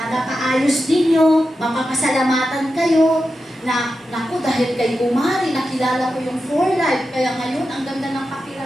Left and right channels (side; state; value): both; normal; correlation 0.90